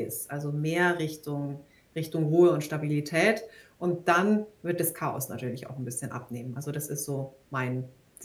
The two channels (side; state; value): both; identical; correlation 1.00